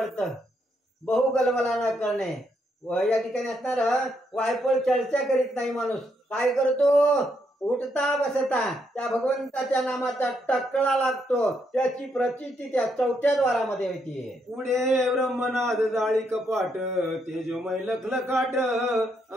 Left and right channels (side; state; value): both; normal; correlation 0.77